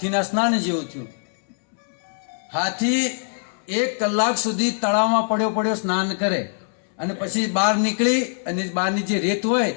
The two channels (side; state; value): right; silent; 64 dB below the other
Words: સ્નાન જેવું થયું. હાથી 1 કલાક સુધી તળાવમાં પડ્યો સ્નાન કરે અને પછી બહાર નીકળી અને બહારની જે રેત હોય